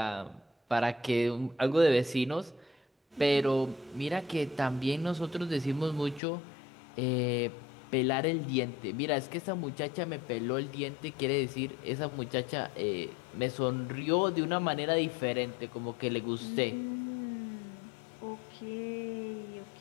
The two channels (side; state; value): right; drops out; at 6.2 s